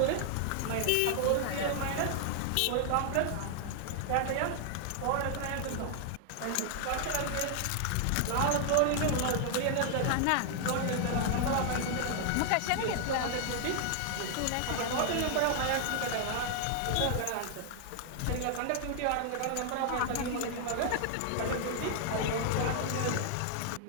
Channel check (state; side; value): different; both; correlation 0.00